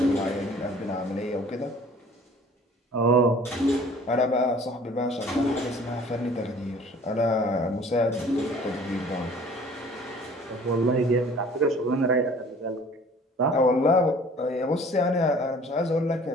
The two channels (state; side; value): normal; both; correlation 0.50